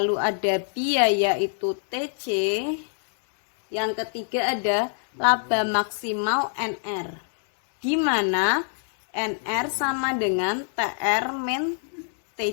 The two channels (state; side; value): silent; right; digital silence